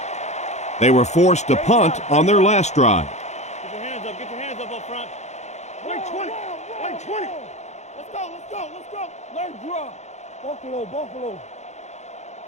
They were forced to punt on their last drive. Get your hands up front. Wait 20. Let's go. Let's draw. Buffalo.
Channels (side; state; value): right; late; 0.33 ms